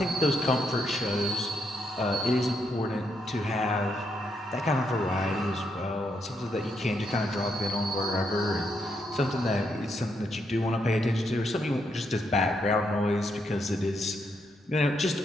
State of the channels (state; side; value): normal; both; correlation 0.78